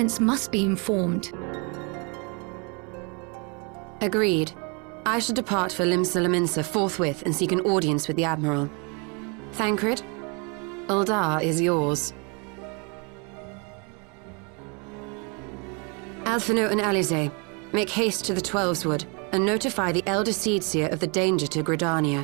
must be informed. Agreed. I should depart for Limsa forthwith and seek an audience with the Admiral. Thancred, Uldar is yours. Alphino and Alize, make haste to the Twelveswood and notify the Elder Seedseer of the danger to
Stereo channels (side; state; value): left; quieter; 33.3 dB